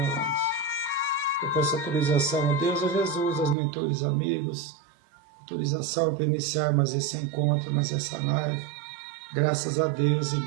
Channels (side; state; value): left; drops out; at 3.6 s